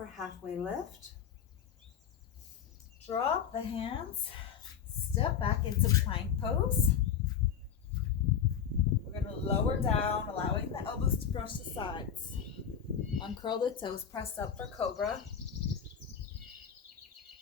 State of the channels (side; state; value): right; quieter; 8.1 dB